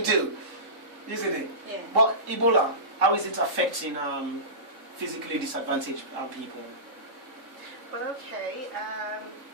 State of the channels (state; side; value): late; left; 3.7 ms